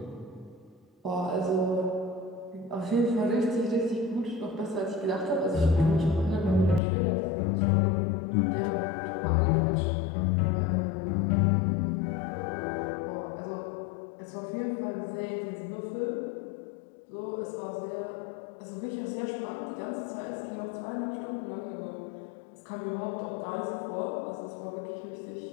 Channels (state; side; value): drops out; right; at 6.8 s